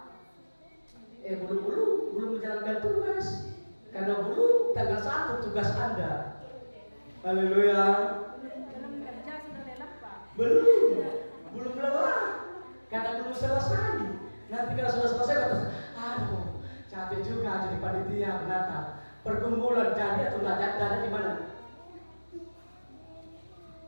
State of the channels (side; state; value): both; inverted; correlation -1.00